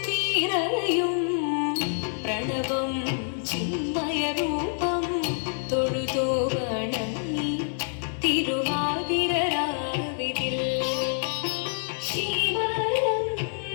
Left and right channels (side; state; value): right; silent; digital silence